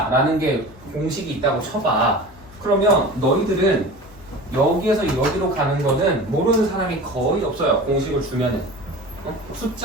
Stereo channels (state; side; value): noise; left; hum, 23 dB below the sound